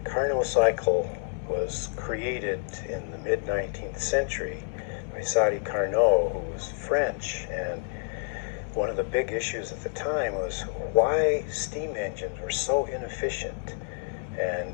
Carnot cycle was created in the mid-19th century by Carnot, who was French, and one of the big issues at the time was why steam engines were so inefficient.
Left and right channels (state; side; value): silent; right; digital silence